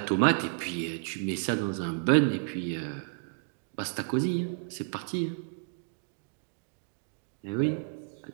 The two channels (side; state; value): left; silent; 57 dB below the other